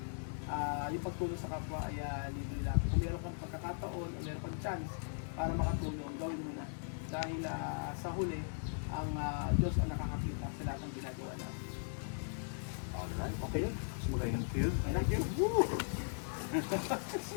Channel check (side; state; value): right; silent; digital silence